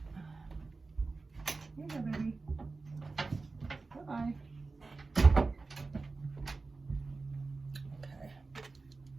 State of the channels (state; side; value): quieter; left; 3.8 dB